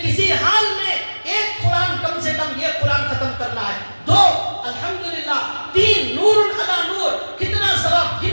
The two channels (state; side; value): inverted; both; correlation -1.00